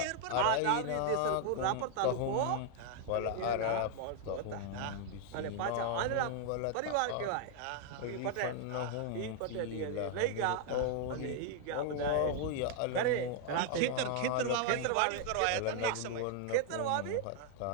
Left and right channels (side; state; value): both; different; correlation 0.00